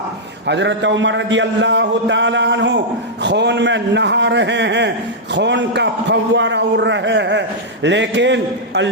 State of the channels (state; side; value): normal; both; correlation -0.07